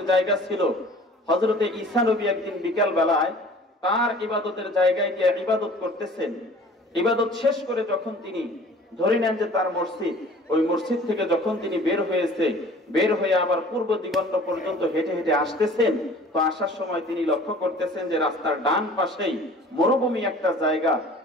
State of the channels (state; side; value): normal; both; correlation 0.48